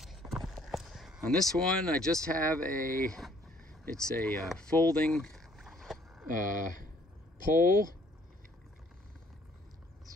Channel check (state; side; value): normal; both; correlation 0.61